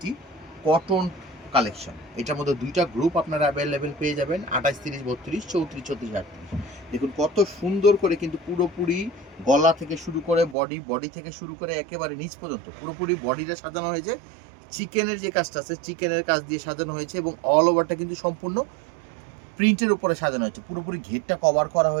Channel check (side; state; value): left; drops out; at 10.6 s